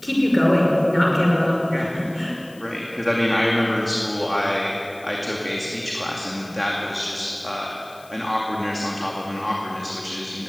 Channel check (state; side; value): noise; left; hiss, 24 dB below the sound